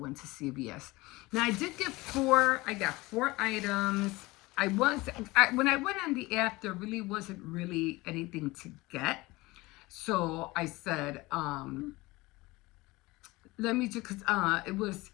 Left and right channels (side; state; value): right; quieter; 21.4 dB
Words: to CVS. Now I did get I got 4 items. When I went on the app, there really wasn't really anything to get. So I said, let me just, it was,